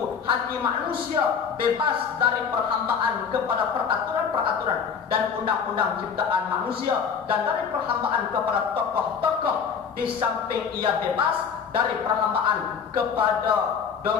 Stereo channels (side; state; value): right; quieter; 6.6 dB